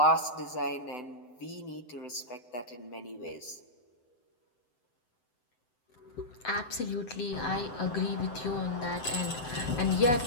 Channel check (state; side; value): late; right; 7.9 ms